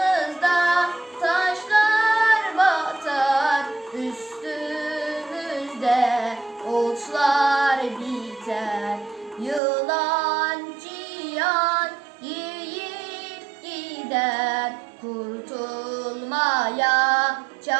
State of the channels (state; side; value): drops out; left; at 9.6 s